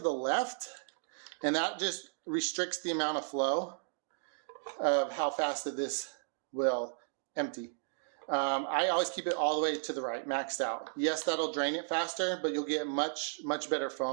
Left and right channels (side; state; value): left; silent; digital silence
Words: left, and that just restricts the amount of flow of how fast that this will empty. I always keep it all the way to the right, maxed out. Yes, that'll drain it faster, but you'll get much better